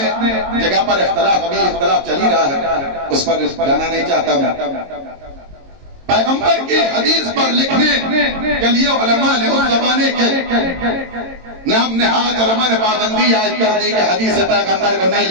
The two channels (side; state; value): left; late; 22 ms